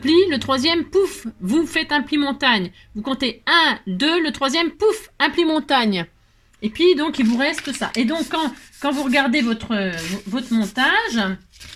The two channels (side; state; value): both; identical; correlation 1.00